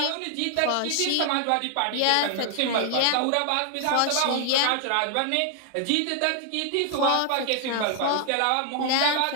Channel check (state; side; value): different; both; correlation 0.00